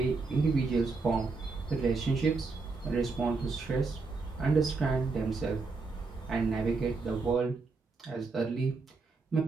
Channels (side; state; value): left; quieter; 4.1 dB